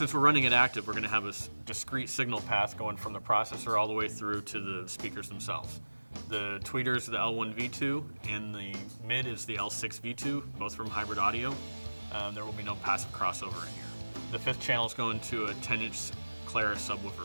we're running it active, we're going to have a discrete signal path going from the processor all the way through to the speakers themselves. The tweeter is the L1V2 and the mid is the L6V2, both from Hybrid Audio. There will be no passive crossover in here. The fifth channel is going to a 10-inch Claris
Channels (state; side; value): inverted; both; correlation -1.00